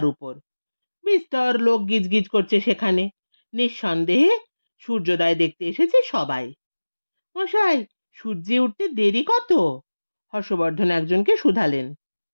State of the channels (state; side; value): inverted; both; correlation -1.00